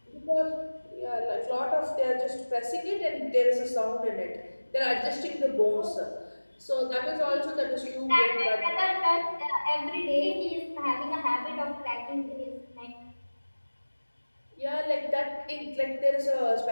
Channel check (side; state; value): both; inverted; correlation -1.00